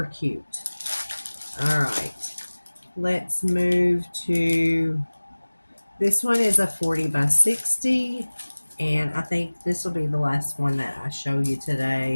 cute. All right. Let's move to, this one is a 40 by 60. And I think this will be the last one that I show you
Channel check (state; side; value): inverted; both; correlation -1.00